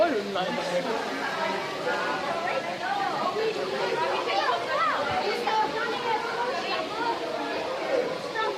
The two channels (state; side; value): identical; both; correlation 1.00